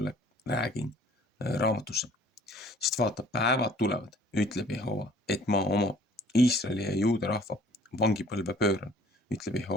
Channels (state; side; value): normal; both; correlation 0.54